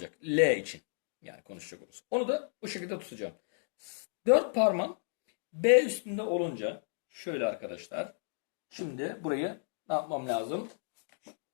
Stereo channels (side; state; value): right; silent; digital silence